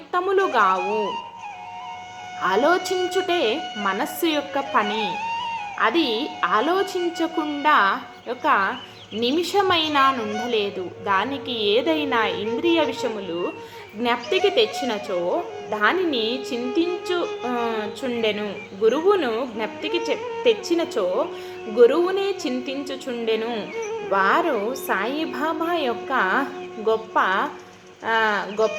ఆలోచించుటే మనస్సు యొక్క పని. అది ఆలోచించకుండా ఒక నిమిషమైనా నుండలేదు. దానికి ఏదైనా ఇంద్రియ విషయములు జ్ఞప్తికి తెచ్చినచో దానిని చింతించుచుండెను. గురువును జ్ఞప్తికి తెచ్చినచో గురువునే చింతించుచుండెను. వారు సాయిబాబా యొక్క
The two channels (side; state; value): both; identical; correlation 1.00